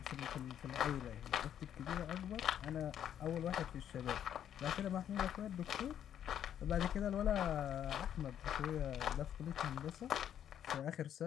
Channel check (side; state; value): right; quieter; 9.9 dB